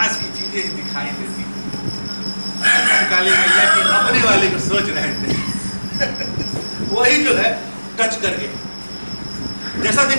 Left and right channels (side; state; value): both; inverted; correlation -1.00